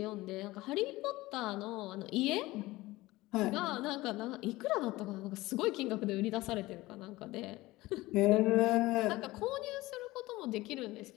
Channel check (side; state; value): right; quieter; 19.1 dB